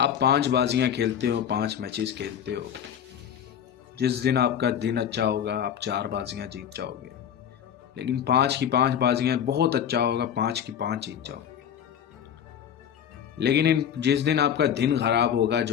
5 बाजियां खेलते हो, 5 मैचेस खेलते हो, जिस दिन आपका दिन अच्छा होगा आप 4 बाजियां जीत जाओगे, लेकिन 5 की 5 बाजियां बहुत अच्छा होगा, 5 की 5 जीत जाओगे। लेकिन जिस दिन आपका दिन खराब होगा,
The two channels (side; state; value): right; quieter; 9.0 dB